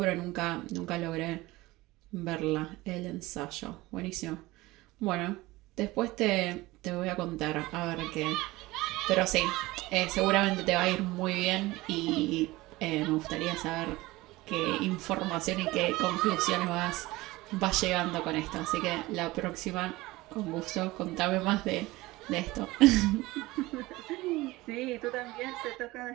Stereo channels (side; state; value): left; quieter; 19.8 dB